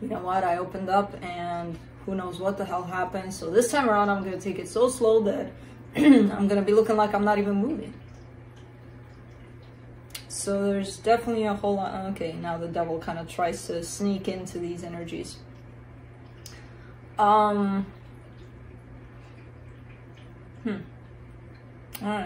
you know what, I opened up and who knows what the hell happened. So this time around, I'm going to take it so slow that I'm going to be looking like I'm not even moving. So there's definitely a whole lot. Okay, now the devil kind of tries to sneak into these energies. Alright,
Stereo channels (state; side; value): identical; both; correlation 1.00